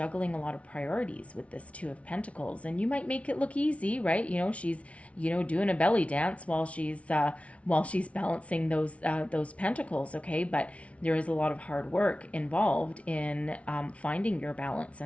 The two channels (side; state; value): right; late; 0.064 ms